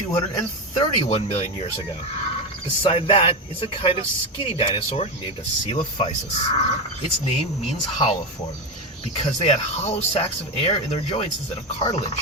million years ago. Beside that is a kind of skinny dinosaur named a Coelophysis. Its name means hollow form because they had hollow sacs of air in their joints instead of cartilage.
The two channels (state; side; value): normal; both; correlation 0.14